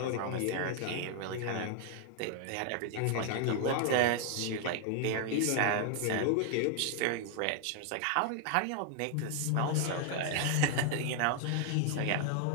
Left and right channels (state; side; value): different; both; correlation 0.00